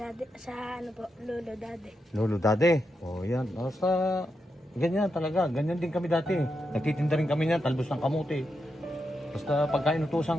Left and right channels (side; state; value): both; normal; correlation 0.85